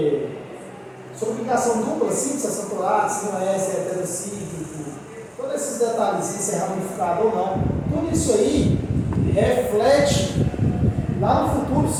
sobre aplicação dupla, simples, acentuado, se não é, se é heterocíclico, todos esses detalhes, se é ramificado ou não. Tudo isso aí reflete lá no futuro,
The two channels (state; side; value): identical; both; correlation 1.00